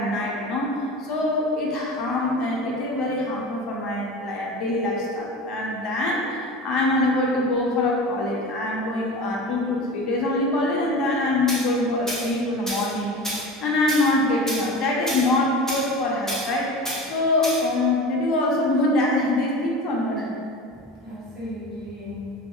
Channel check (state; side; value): normal; both; correlation 0.33